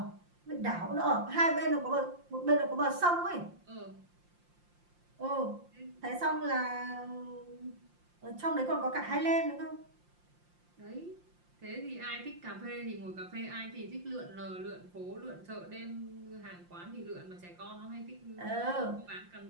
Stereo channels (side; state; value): left; late; 5.7 ms